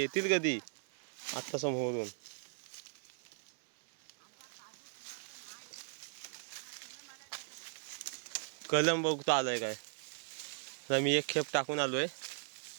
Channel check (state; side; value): silent; left; digital silence